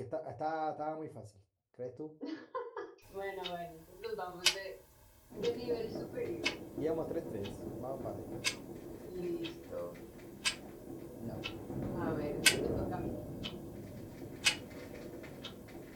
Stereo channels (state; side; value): identical; both; correlation 1.00